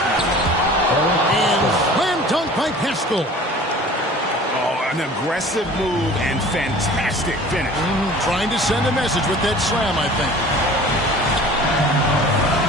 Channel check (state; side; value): normal; both; correlation 0.44